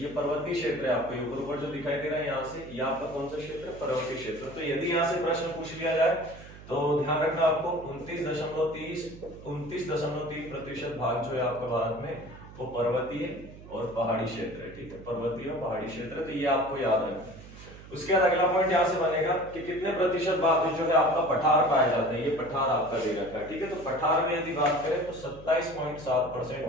पर्वतीय क्षेत्र है। आपको ऊपर ऊपर जो दिखाई दे रहा है यहाँ से, ये आपका कौन सा क्षेत्र है? पर्वतीय क्षेत्र। तो यदि यहाँ से प्रश्न पूछ लिया जाए तो ध्यान रखना आपको 29.3% भाग जो है आपका भारत में वो पर्वतीय और पहाड़ी क्षेत्र है। ठीक है, पर्वतीय और पहाड़ी क्षेत्र। तो ये आपको याद रखना है। उसके बाद अगला पॉइंट यहां से बनेगा कि कितने प्रतिशत भाग जो है आपका पठार पाया जाता है? ये पठार आपका दे रखा है। ठीक है। तो पठार में यदि बात करें तो 27.7%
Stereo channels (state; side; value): noise; right; hum, 17 dB below the sound